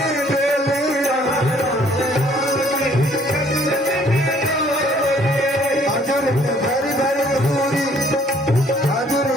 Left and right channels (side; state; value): both; normal; correlation 0.60